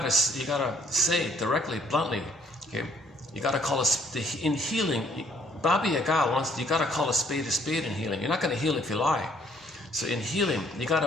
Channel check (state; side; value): normal; both; correlation 0.63